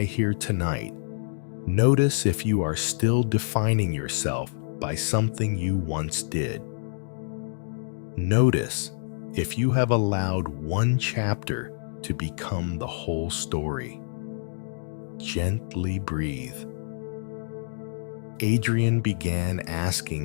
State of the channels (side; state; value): right; silent; digital silence